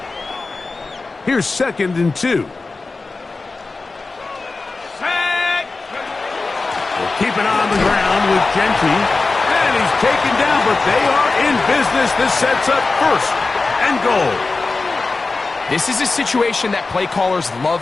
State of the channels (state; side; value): quieter; right; 3.8 dB